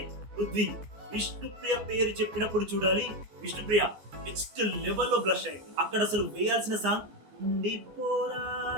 పృథ్వీ విష్ణుప్రియ పేరు చెప్పినప్పుడు చూడాలి విష్ణుప్రియ నెక్స్ట్ లెవెల్లో బ్లష్ అయింది. అక్కడ అసలు వేయాల్సిన సాంగ్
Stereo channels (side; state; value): left; late; 14 ms